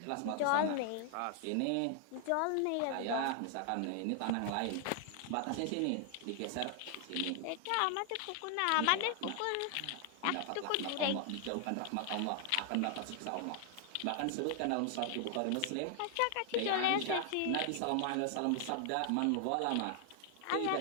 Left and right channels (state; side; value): different; both; correlation 0.00